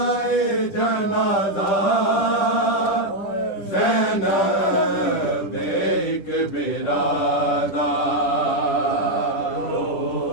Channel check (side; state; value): right; late; 10 ms